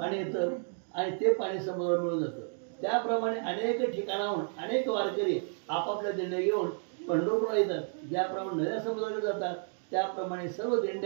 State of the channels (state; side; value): silent; left; 57 dB below the other